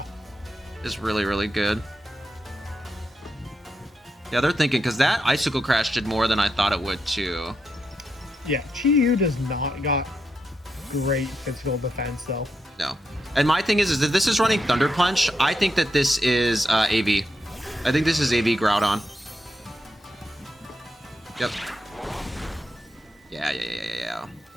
Is really, really good. Yeah, they're thinking, because that Icicle Crash did more than I thought it would, too. Yeah, Chi-Yu does not got great physical defense, though. No. And my thing is that this is running Thunder Punch. I think that this is AV. I think this is AV Groudon. Yep. Yeah.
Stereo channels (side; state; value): both; normal; correlation 0.84